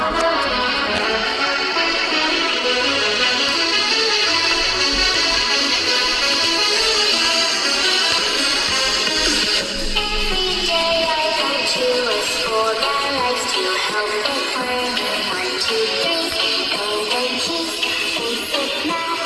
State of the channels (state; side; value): identical; both; correlation 1.00